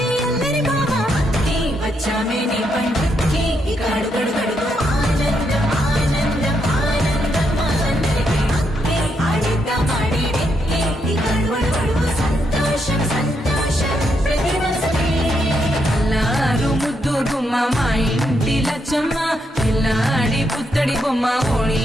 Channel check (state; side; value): normal; both; correlation 0.79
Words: అల్లరి మామ, వచ్చామే నీ పండుకి ఇక అడుగడు గడుగు ఆనందం ఆనందం ఆనందం అందరికీ ఆడిద్దాం ఆడిడే ఇక అడుగడు గడుగు సంతోషం సంతోషం ప్రతి మనసుకి. అల్లారు ముద్దు గుమ్మ మా ఇంటి లచ్చమ్మ, పిల్లాడి పుత్తడి బొమ్మ ఓణి